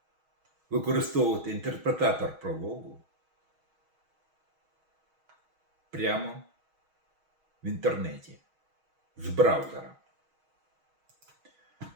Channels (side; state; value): left; late; 6.3 ms